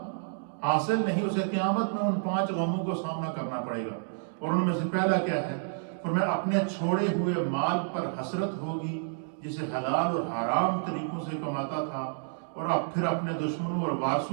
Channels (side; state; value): left; silent; digital silence